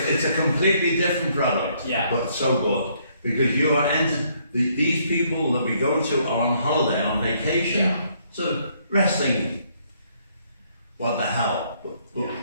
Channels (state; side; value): inverted; both; correlation -0.68